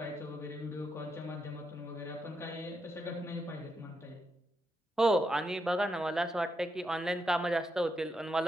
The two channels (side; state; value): both; normal; correlation 0.82